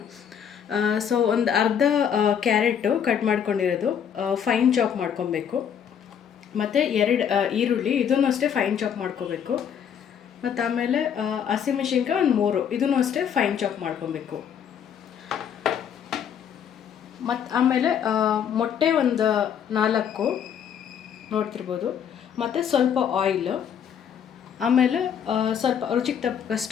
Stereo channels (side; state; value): right; quieter; 8.3 dB